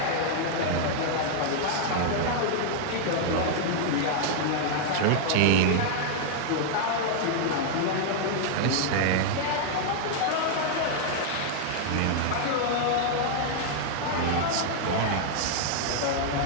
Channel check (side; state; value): both; different; correlation 0.00